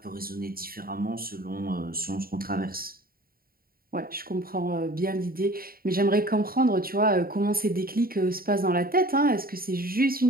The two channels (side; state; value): left; late; 0.43 ms